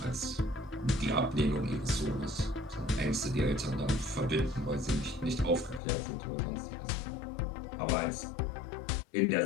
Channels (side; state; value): right; drops out; at 5.8 s